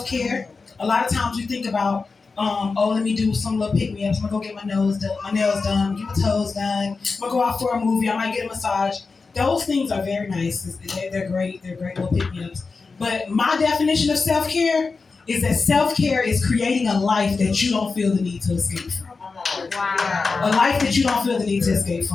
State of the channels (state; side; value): quieter; right; 4.4 dB